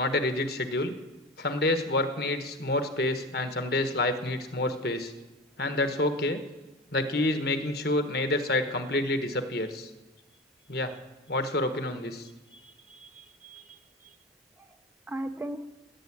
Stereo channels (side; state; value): both; normal; correlation 0.30